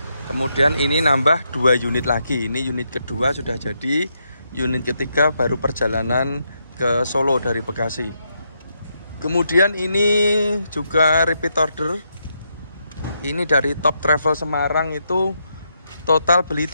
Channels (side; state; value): both; inverted; correlation -0.80